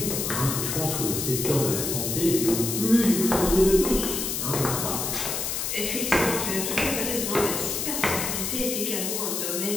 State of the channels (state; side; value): noise; left; hiss, 2 dB below the sound